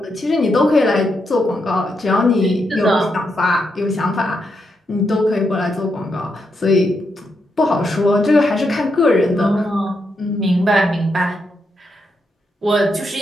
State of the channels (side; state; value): both; normal; correlation 0.82